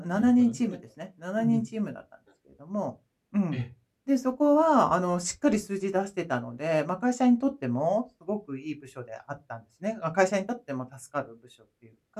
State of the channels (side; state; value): both; identical; correlation 1.00